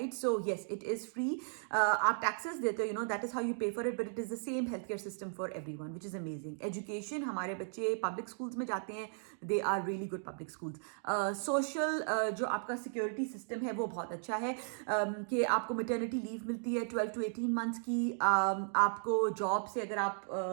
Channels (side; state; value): left; silent; digital silence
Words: So yes, it is free, आप टैक्सेस देते हो, that is how you pay for it, but it is the same health care system for everyone, which is amazing. Education, हमारे बच्चे public schools में जाते हैं, they are really good public schools. Social जो आपका security system है वो बहुत अच्छा है, कि आपको मैटरनिटी लीव मिलती है 12 to 18 मंथ्स की. आपको जॉब से अगर